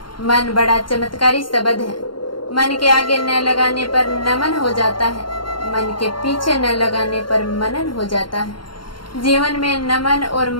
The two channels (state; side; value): late; right; 0.72 ms